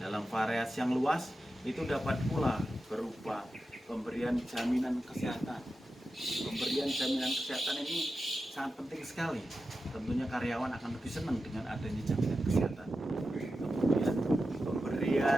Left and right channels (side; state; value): both; normal; correlation 0.91